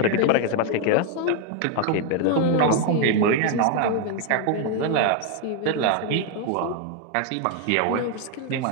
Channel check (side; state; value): both; different; correlation 0.01